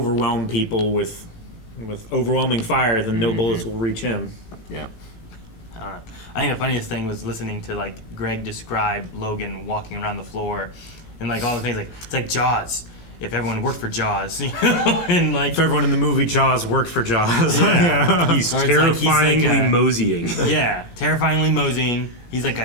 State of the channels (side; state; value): right; late; 18 ms